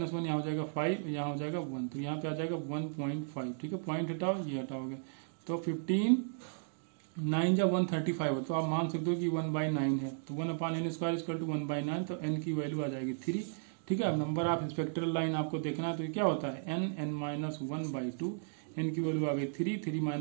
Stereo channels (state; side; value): silent; left; digital silence